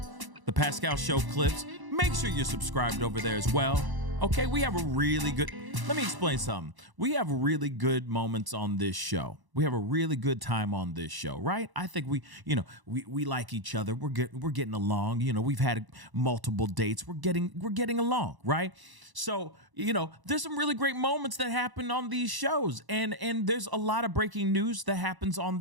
the Pascal Show Clips. Make sure you're subscribed over there as well, okay? We have a really good, let me explain something. We have really good moments on this show. We have a really good time on this show, right? I think we like each other. We're getting along. We've had multiple dates. We're getting along, right? So, there's some really great moments that happen on these shows. And there's a lot of breaking news that happens on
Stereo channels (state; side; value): late; left; 1.0 ms